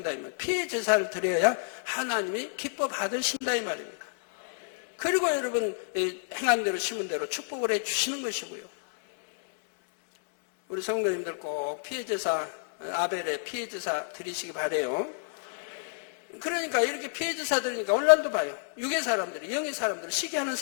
이 말이에요. 피의 제사를 드려야 하나님이 기뻐 받으신다 이 말입니다. 그리고 여러분 행한 대로 심은 대로 축복을 해 주시는 것이고요. 우리 성도님들 꼭 피의 제사 아벨의 피의 제사 드리시기 바래요. 그러니까 이렇게 피의 제사 드리니까 오늘날도 봐요. 육의 사람들이 영의 사람들 시기하는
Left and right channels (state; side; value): silent; right; digital silence